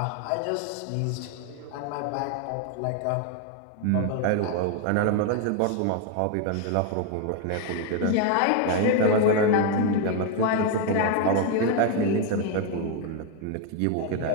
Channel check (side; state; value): both; different; correlation 0.01